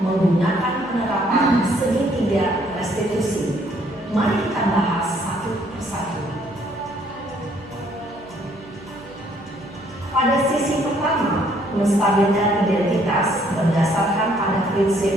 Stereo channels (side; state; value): right; noise; hum, 24 dB below the sound